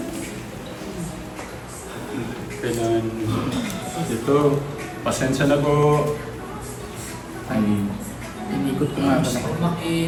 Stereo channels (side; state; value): both; identical; correlation 1.00